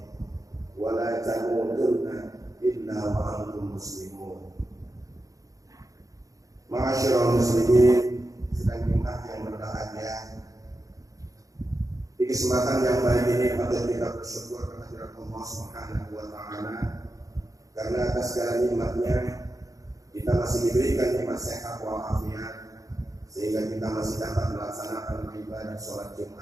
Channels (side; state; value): left; late; 0.17 ms